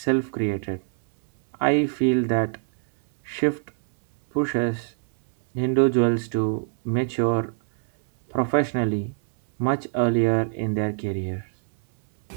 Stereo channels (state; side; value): silent; left; 63 dB below the other